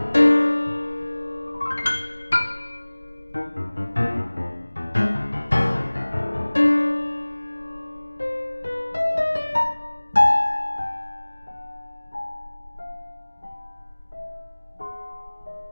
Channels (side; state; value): both; inverted; correlation -1.00